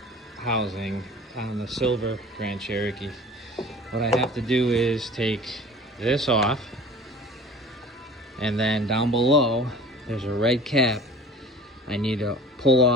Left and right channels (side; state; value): both; normal; correlation 0.43